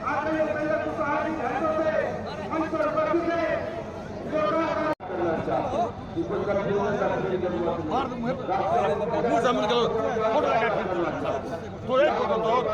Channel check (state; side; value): identical; both; correlation 1.00